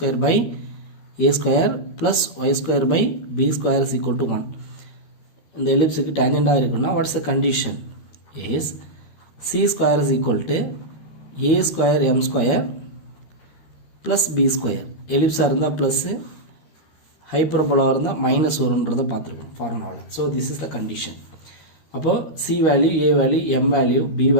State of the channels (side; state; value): right; late; 13 ms